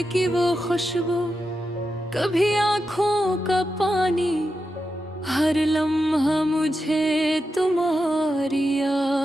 की वो खुशबू, कभी आँखों का पानी, हर लम्हा मुझे तुम्हारी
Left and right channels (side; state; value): both; normal; correlation 0.88